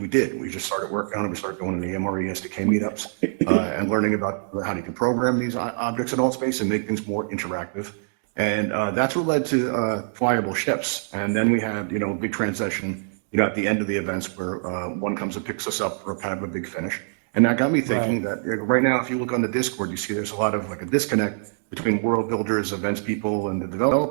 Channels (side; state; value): left; silent; digital silence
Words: did. We just started working on it. We started going to the MRE SDK meetups and learning about how you can program these objects in all space and make things more interactive. And that's what led to flyable ships. And then we had, a big transition, at the end of the events where one comes and picks us up for kind of a big finish. And that got me thinking that right now, if you look on the Discord, you see there's a lot of like a disconnect between world builders, events people, and the